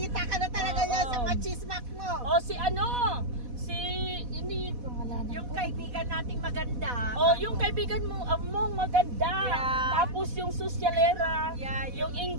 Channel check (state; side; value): late; left; 4.1 ms